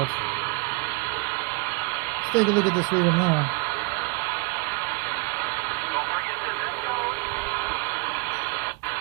Let's take a look at this river now.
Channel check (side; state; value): left; quieter; 26.6 dB